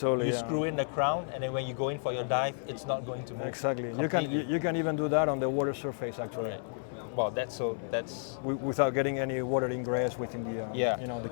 you yeah. screw in the crown, and then when you go in for your dive, it's not going to move. Exactly. completely. You can even do that on the water surface actually, Right. Well, that's without getting any water ingress within the Yeah. the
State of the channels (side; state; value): right; silent; digital silence